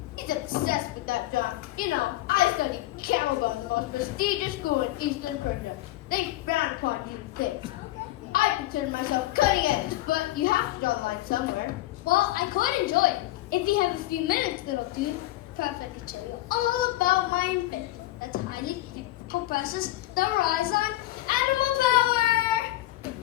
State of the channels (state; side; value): quieter; right; 16.4 dB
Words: He's obsessed with that job. You know, I studied camel guns in the most prestigious school in Eastern Persia. They frown upon you things. I consider myself cutting edge, but you have to draw the line somewhere. Well, I could enjoy it. If you have a few minutes, little dude, perhaps I could tell you all about my invention. A tiny compresses the rise on animal power.